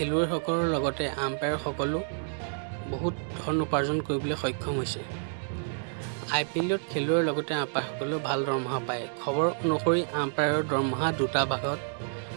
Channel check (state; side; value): silent; left; digital silence